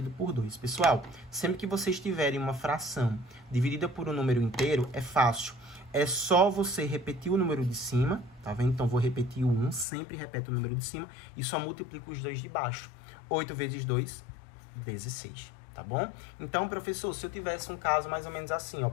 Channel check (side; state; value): right; drops out; at 9.9 s